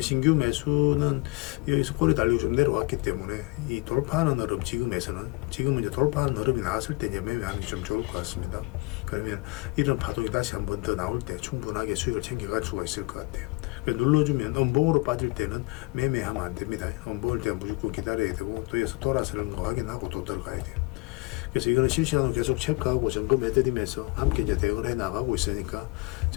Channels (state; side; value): quieter; right; 26.0 dB